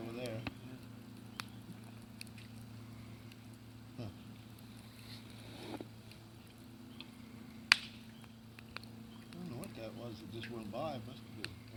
over there. Huh. I don't know what that was that just went by. It must have been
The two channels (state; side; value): identical; both; correlation 1.00